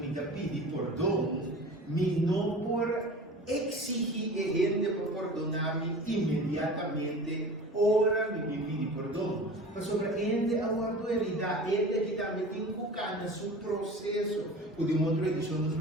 dá pedir perdão, me não por exigir ele para perdonar-me imediatamente, ora me pedir perdão. Mas sobre ele aguardo herida, ele que também tem que ficar no seu processo. O de uma outra edição nos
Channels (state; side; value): normal; both; correlation 0.38